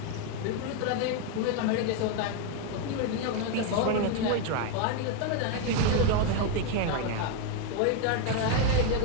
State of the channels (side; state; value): both; different; correlation 0.01